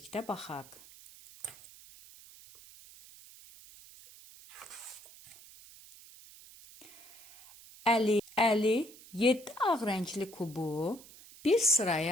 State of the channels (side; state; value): right; noise; hiss, 21 dB below the sound